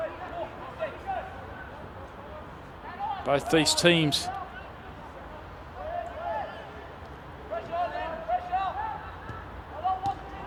Both these teams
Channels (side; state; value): both; identical; correlation 1.00